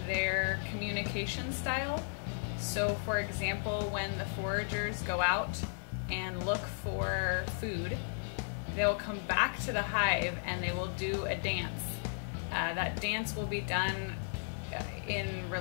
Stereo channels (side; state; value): right; silent; digital silence